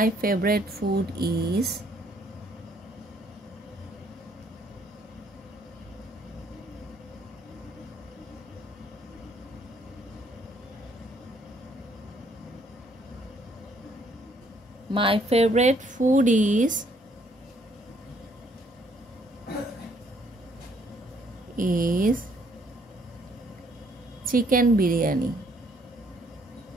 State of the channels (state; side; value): normal; both; correlation 0.66